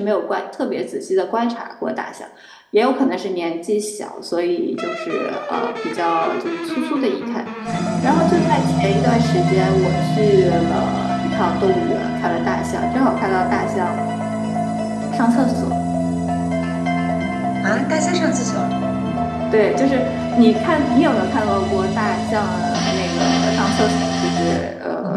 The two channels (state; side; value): identical; both; correlation 1.00